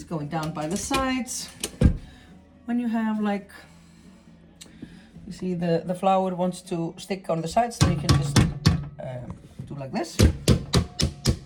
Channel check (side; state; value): both; identical; correlation 1.00